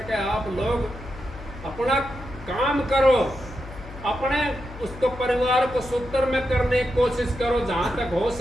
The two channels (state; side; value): noise; left; hum, 15 dB below the sound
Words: आप लोग अपना काम करो, अपने उसको परिवार को सूत्र में करने की कोशिश करो जहां तक हो